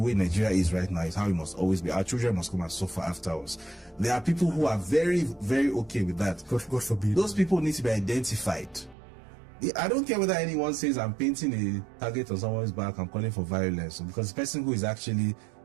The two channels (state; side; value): drops out; left; at 9.0 s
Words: Nigeria is right now is how it must always be. Our children must come and suffer after us. There are people who are very, very okay with that. God forbid. Those people need to be identified. I don't care whether anyone says I'm painting a target on someone's back, I'm calling for violence, because the person who is actually